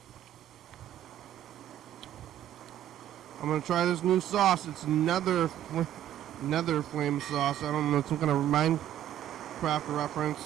I'm gonna try this new sauce. It's nether flame sauce. I don't know, it's some kind of Minecraft reference.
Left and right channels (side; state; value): left; quieter; 11.7 dB